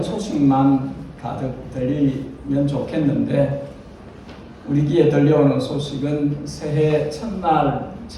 소식만 가득 들리면 좋겠는데 우리 귀에 들려오는 소식은 새해 첫날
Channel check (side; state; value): both; identical; correlation 1.00